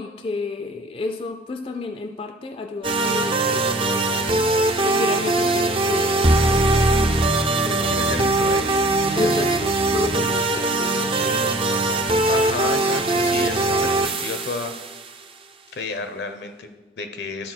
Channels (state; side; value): normal; both; correlation 0.47